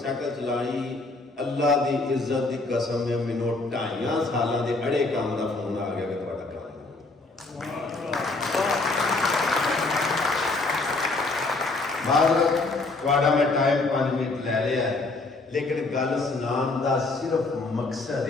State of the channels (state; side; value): quieter; right; 3.3 dB